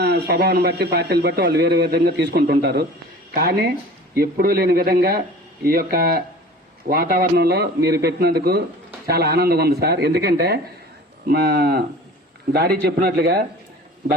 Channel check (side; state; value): both; normal; correlation 0.42